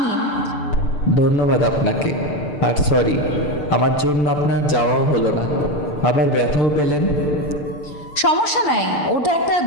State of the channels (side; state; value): right; late; 6.7 ms